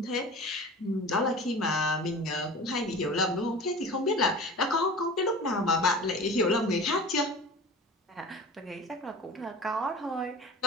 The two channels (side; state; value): both; normal; correlation 0.37